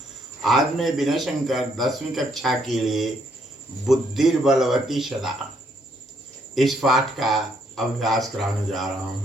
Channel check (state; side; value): normal; both; correlation 0.71